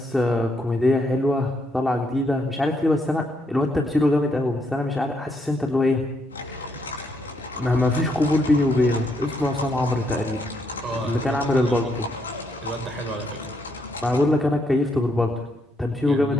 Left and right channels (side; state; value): both; normal; correlation 0.76